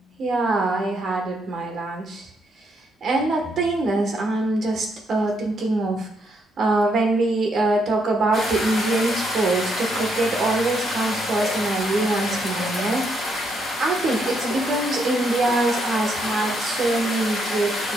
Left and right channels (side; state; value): both; normal; correlation 0.76